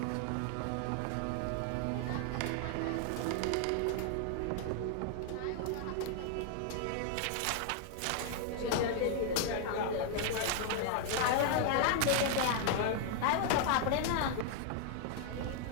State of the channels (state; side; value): different; both; correlation 0.00